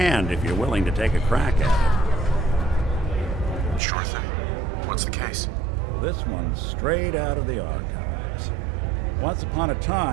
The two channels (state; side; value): drops out; left; at 3.8 s